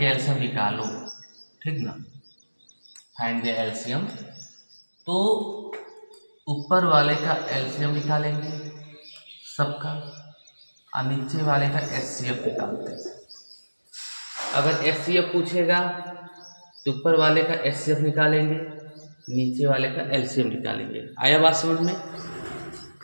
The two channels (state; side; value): inverted; both; correlation -1.00